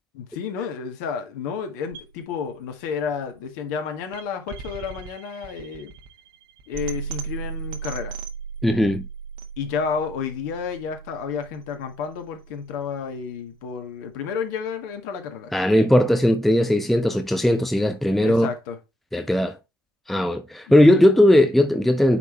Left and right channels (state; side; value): normal; both; correlation 0.81